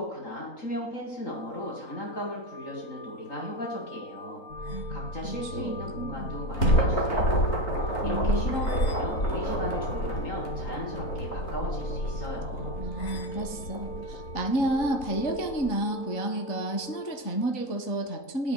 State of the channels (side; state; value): right; late; 3.9 ms